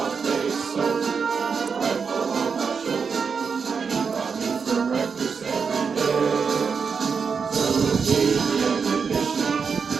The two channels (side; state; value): left; quieter; 5.8 dB